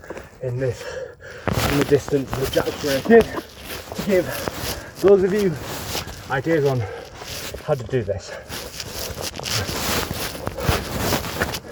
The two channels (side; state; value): both; identical; correlation 1.00